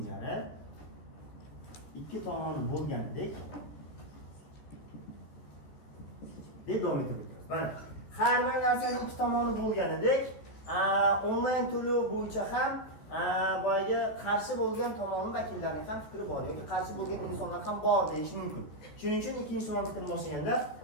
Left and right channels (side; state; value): right; late; 14 ms